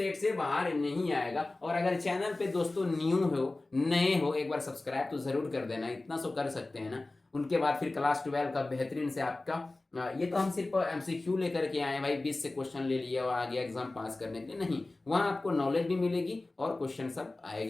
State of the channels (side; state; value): right; quieter; 3.0 dB